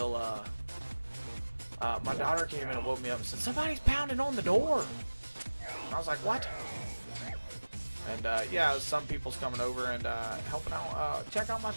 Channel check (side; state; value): both; inverted; correlation -1.00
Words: my daughter came in and woke me up and said, "Somebody's pounding on the door." And I was like, "What?" And yeah, some people's coming over and helping out, check out my